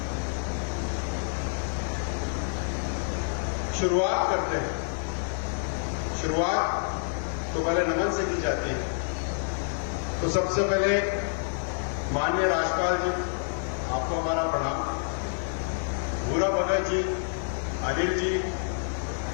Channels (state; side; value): silent; right; digital silence